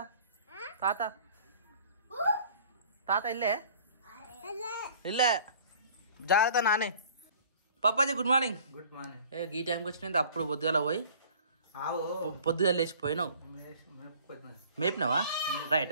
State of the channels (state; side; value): inverted; both; correlation -0.50